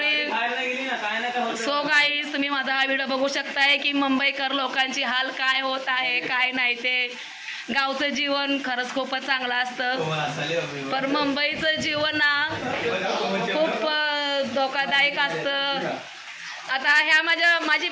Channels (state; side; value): identical; both; correlation 1.00